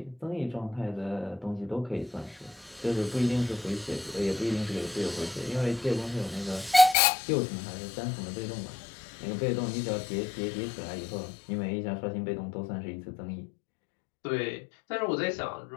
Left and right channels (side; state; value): right; drops out; at 7.0 s